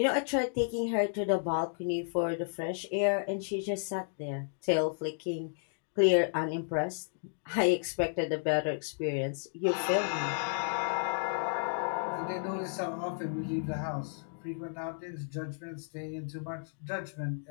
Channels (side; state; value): right; silent; digital silence